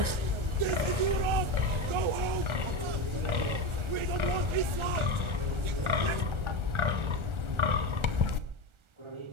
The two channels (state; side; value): late; left; 1.4 ms